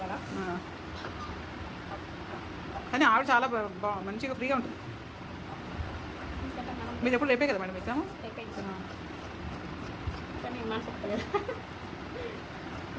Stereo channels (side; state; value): both; identical; correlation 1.00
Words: కానీ ఆవిడ చాలా మంచిగా ఫ్రీగా ఉంటుంది. మీరు ఎప్పుడు రేపే కదా మేడం ఎగ్జామ్?